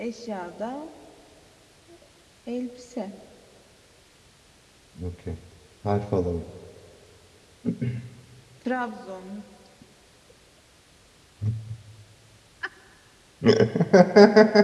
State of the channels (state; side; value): identical; both; correlation 1.00